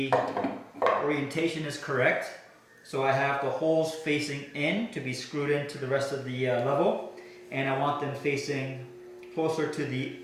orientation is correct. So I have the holes facing in to be screwed into the rest of the level, and I want them facing closer to the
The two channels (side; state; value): both; identical; correlation 1.00